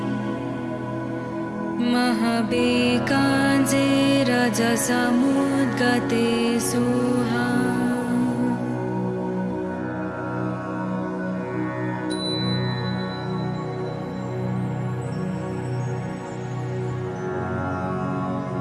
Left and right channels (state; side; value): identical; both; correlation 1.00